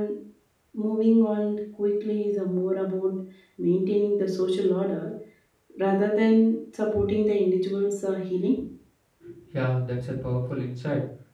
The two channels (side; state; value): both; identical; correlation 1.00